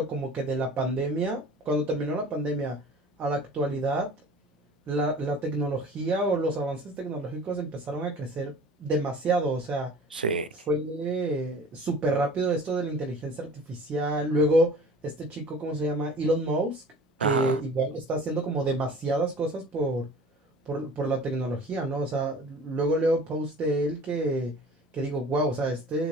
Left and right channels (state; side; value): normal; both; correlation 0.44